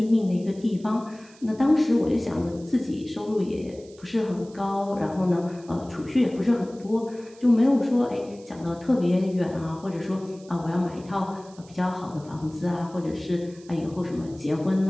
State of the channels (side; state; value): right; noise; hiss, 25 dB below the sound